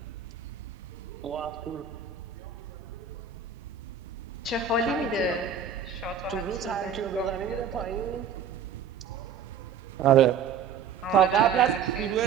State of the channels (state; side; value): quieter; left; 7.1 dB